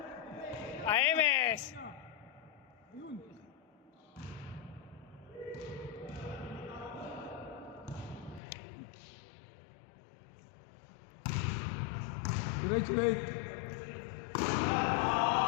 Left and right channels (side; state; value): right; drops out; at 8.4 s